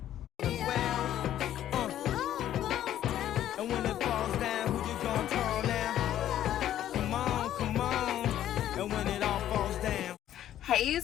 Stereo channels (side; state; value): right; quieter; 11.8 dB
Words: And when it falls down, who you gonna call now? Come on, come on. And when it all falls down. Hey